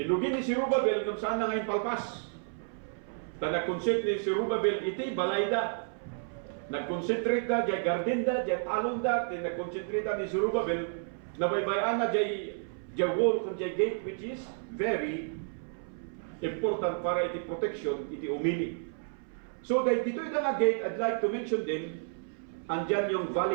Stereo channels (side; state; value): left; silent; 57 dB below the other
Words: ni Zerubbabel kung saan na ngayon palpas. Nag-concentrate ni Zerubbabel iti balayda. Nag-concentrate na diya gardenda, diya talonda, nag-concentrate ni Zerubbabel na baybayan na diya wall kung diya gate, which is very important para iti protection, iti umili. So dito yung nga gate, I'd like to mention din, andyan yung